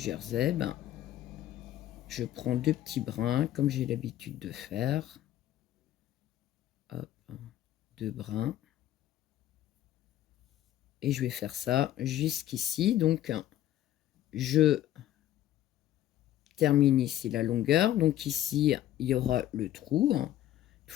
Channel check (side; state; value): right; quieter; 12.8 dB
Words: ben, je prends 2 petits brins, comme j'ai l'habitude de faire. Hop, 2 brins. Et je vais faire ça jusqu'ici. Donc, je termine ici la longueur. Donc ici, il y aura le trou. Une